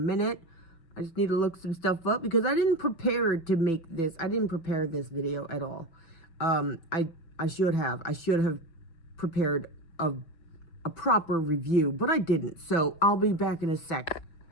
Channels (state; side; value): late; right; 6.0 ms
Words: I just need to look some stuff up because I didn't prepare to make this. I didn't prepare this video at all. I should have prepared a proper review, but I didn't. So I'll be back in a sec.